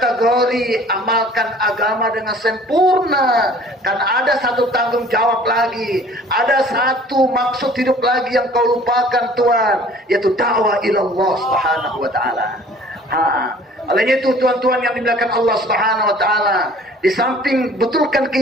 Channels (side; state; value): both; normal; correlation 0.50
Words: amalkan agama dengan sempurna, karena ada satu tanggung jawab lagi, ada satu maksud hidup lagi yang kau lupakan Tuhan, yaitu dakwah ilallah Subhanahu wa ta'ala. Oleh itu tuan-tuan yang dimuliakan Allah Subhanahu wa ta'ala, di samping betulkan